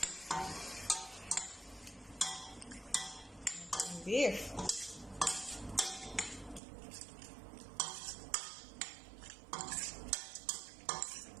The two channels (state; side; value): drops out; left; at 6.6 s